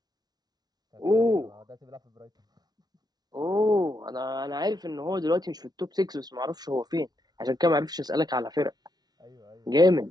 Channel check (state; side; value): late; left; 0.19 ms